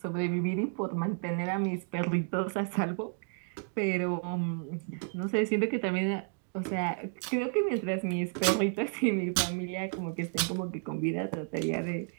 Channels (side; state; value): left; silent; 57 dB below the other